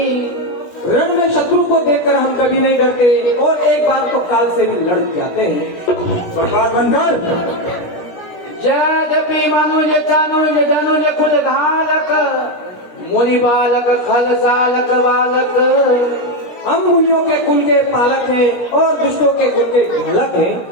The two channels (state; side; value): late; right; 17 ms